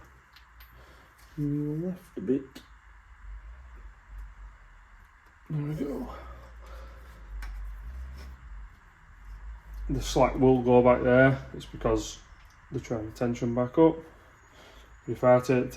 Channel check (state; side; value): identical; both; correlation 1.00